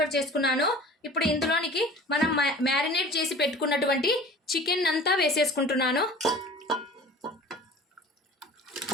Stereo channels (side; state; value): both; normal; correlation 0.42